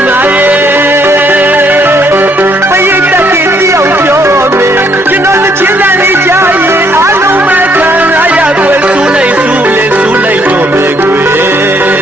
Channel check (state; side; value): normal; both; correlation 0.68